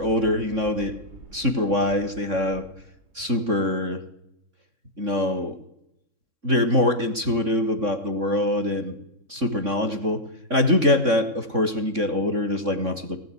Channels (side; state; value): left; late; 3.6 ms